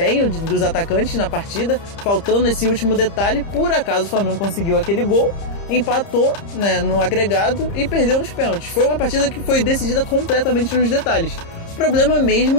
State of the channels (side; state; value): right; late; 30 ms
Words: dos atacantes na partida, faltando esse último detalhe. Por acaso o Flamengo conseguiu aquele gol, empatou, né, no agregado e perdeu nos pênaltis. Foi uma partida que foi decidida completamente nos detalhes. O problema